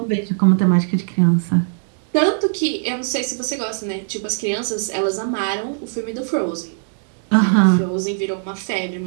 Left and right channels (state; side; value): silent; left; digital silence